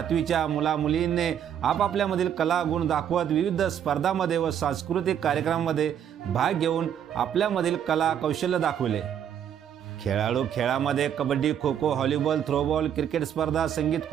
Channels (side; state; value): left; quieter; 9.2 dB